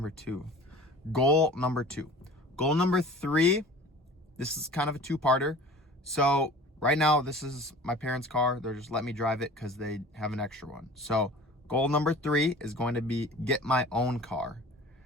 2. Goal number 2. Goal number 3, this is kind of a 2-parter. So right now, this is my parents' car. They're just letting me drive it because they have an extra one. So goal number 3 is going to be get my own car.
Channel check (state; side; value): normal; both; correlation 0.42